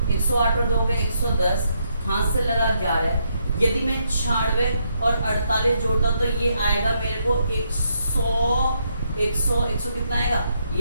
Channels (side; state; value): both; inverted; correlation -0.76